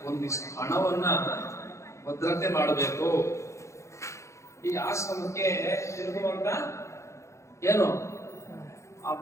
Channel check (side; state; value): right; late; 0.14 ms